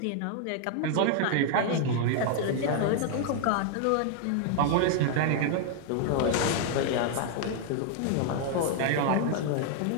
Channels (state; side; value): different; both; correlation 0.00